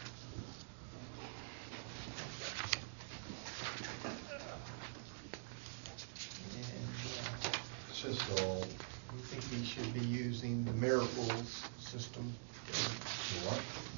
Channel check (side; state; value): left; silent; digital silence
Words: It's just all, We think we should be using the merit rules system. what?